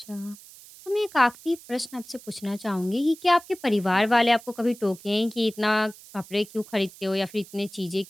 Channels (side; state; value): right; noise; hiss, 20 dB below the sound